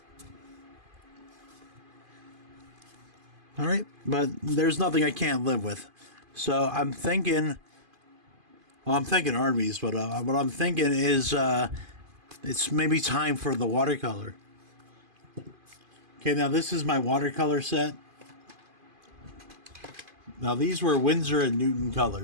All right, but there's nothing I can't live with. So I'm thinking, well, I'm thinking Arby's, but what I'm thinking is it's maybe time for the watercolor. Okay, now this is my watercolor set. Now these were Winsor and Newton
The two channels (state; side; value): late; left; 2.5 ms